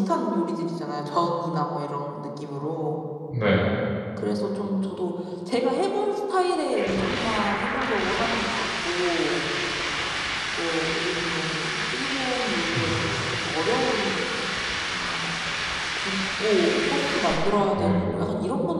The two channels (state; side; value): identical; both; correlation 1.00